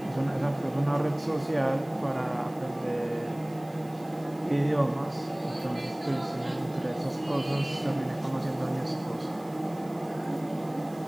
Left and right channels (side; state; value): right; noise; hiss, 25 dB below the sound